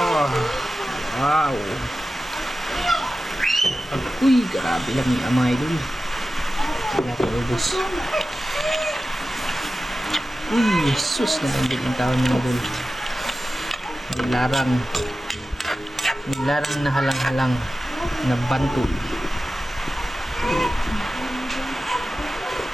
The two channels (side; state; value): both; normal; correlation 0.94